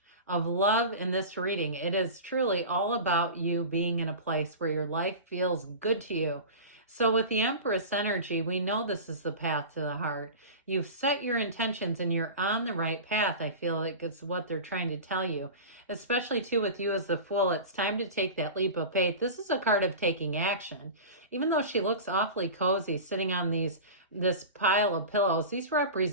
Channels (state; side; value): inverted; both; correlation -0.31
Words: of love in this reading. It is truly all about you being in a place where your life feels good to you. So with the Empress energy, we know this is the path to the heart. You've set your intentions and you're on the right path. I feel like it's what they're trying to tell you, especially too with you as the Fool. It's time to take that leap of faith. This is a card of taking action. Even though she looks awfully cozy sitting on this pile of pillows, these